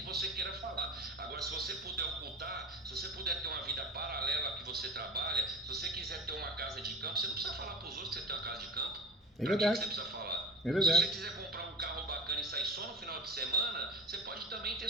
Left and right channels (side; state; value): both; normal; correlation 0.31